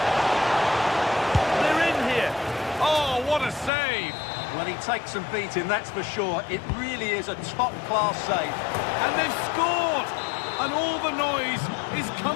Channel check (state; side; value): drops out; right; at 3.7 s